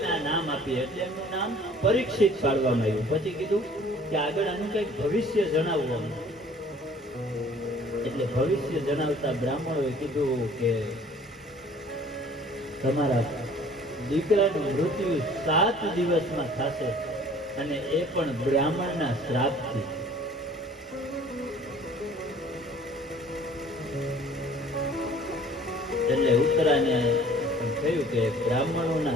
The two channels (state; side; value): normal; both; correlation 0.52